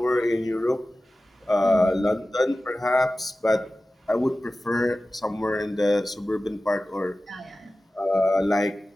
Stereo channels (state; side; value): normal; both; correlation 0.95